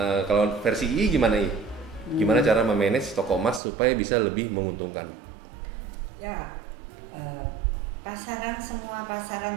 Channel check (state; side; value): drops out; left; at 3.6 s